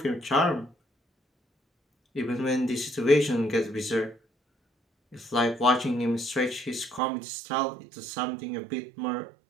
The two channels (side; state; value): left; drops out; at 7.0 s